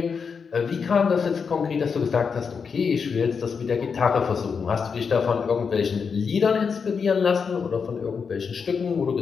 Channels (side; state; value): right; quieter; 5.8 dB